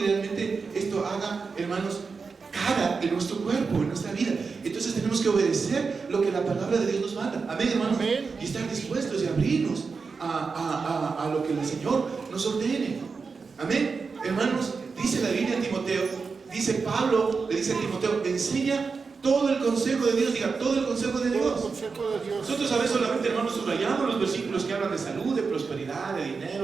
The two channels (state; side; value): quieter; left; 4.9 dB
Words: esto haga, hermanos, cara en nuestro cuerpo, en nuestra vida. Entonces tenemos que obedecer lo que la palabra de Dios nos manda. Amén, hermanos. Amén. Y estar dispuestos y abrirnos a lo que el Señor nos ordene. Amén. Hermanos, dice la Biblia en Timoteo, dice Pablo, le dice a Timoteo, enseña todo el consejo de Dios. Diga, todo el consejo de Dios. Nosotros a veces solamente, hermanos, subrayamos los versículos que hablan de salud, de prosperidad, de